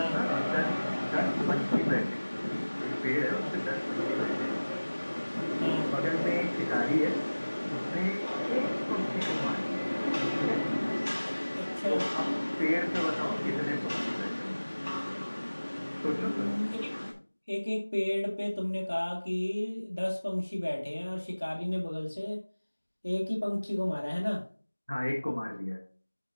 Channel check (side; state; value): both; inverted; correlation -1.00